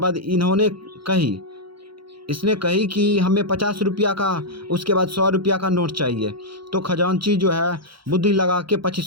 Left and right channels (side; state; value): left; late; 0.74 ms